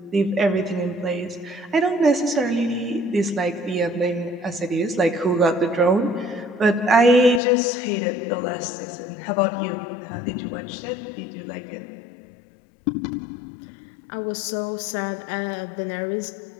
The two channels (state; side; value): drops out; right; at 7.4 s